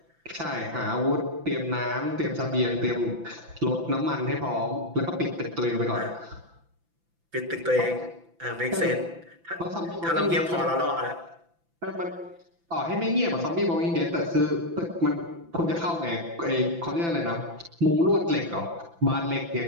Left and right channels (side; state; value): left; late; 5.9 ms